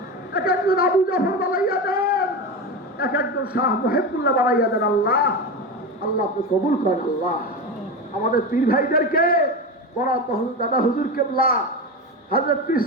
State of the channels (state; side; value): normal; both; correlation 0.21